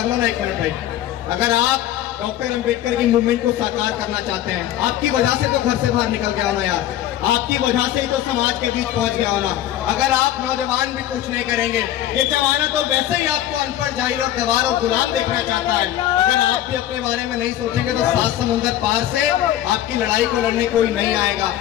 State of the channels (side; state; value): right; quieter; 12.5 dB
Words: लो ना एक मिनट भाई। अगर आप डॉक्टर अंबेडकर की मूवमेंट को साकार करना चाहते हैं, आपकी वजह से तो घर से बाहर निकल गया होना यार, आपकी वजह से ही तो समाज के बीच पहुंच गया होना। अगर आप नौजवान भी कुछ नहीं करेंगे, ये जमाना तो वैसे ही आपको अनपढ़, जाहिल और गवार और गुलाम देखना चाहता है। अगर आप भी अपने बारे में नहीं सोचेंगे तो 7 समुंदर पार से आपकी लड़ाई को लड़ने कोई नहीं आएगा।